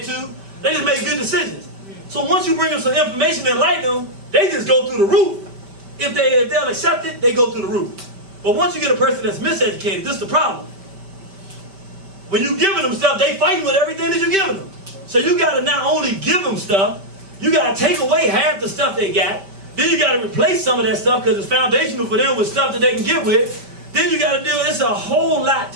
to. They just made good decisions. So once you bring them some information that enlighten them, they just go through the roof. If they'll accept it, they go through the roof. But once you get a person that's miseducated, this is the problem. When you're giving them stuff, they fighting with everything that you're giving them. So you got to not only give them stuff, you got to take away half the stuff they got. Then you got to replace some of that stuff because it's foundational for them with stuff that they can get with. Then you got to deal, it's a whole lot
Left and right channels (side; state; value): left; late; 5.1 ms